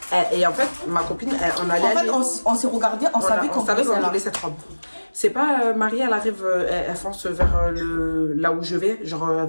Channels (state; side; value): inverted; both; correlation -1.00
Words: Et en fait, ma copine, on allait aller... En fait, on s'est regardé, on savait qu'on voulait cette robe. C'est pas Marie, elle arrive, elle fonce vers là où je vais, genre elle